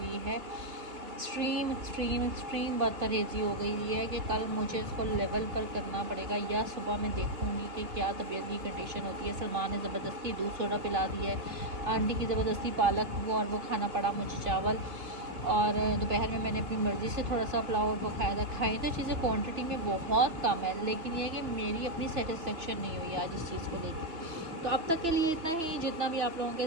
है, एक्सट्रीम बदपरहेज़ी हो गई है कि कल मुझे इसको लेवल पर करना पड़ेगा, या सुबह मैं देखूँगी कि क्या तबीयत की कंडीशन होती है। सलमान ने ज़बरदस्ती दूध सोडा पिला दिया है, आंटी की ज़बरदस्ती पालक और वो खाना पड़ा मुझे चावल, और दोपहर में मैंने अपनी मर्ज़ी से थोड़ा सा पुलाव और वो खाया था। खाई तो चीज़ें क्वांटिटी में बहुत कम है, लेकिन यह है कि मेरी अपनी सेटिस्फेक्शन नहीं हुई आज इस चीज़ को लेकर। तो अब तक के लिए इतना ही, जितना भी आप लोगों के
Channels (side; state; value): left; late; 3.0 ms